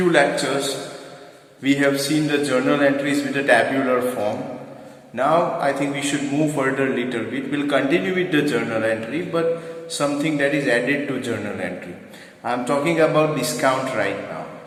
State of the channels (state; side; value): identical; both; correlation 1.00